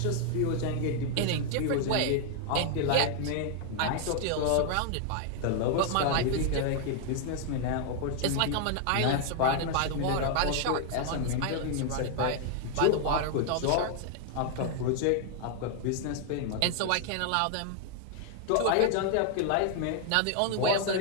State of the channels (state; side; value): different; both; correlation 0.00